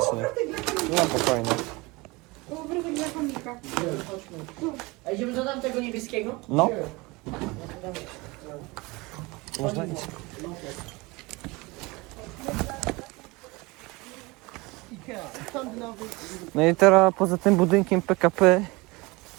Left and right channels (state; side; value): quieter; left; 24.1 dB